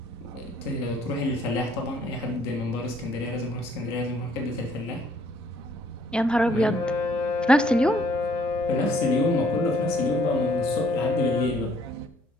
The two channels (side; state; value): both; normal; correlation 0.63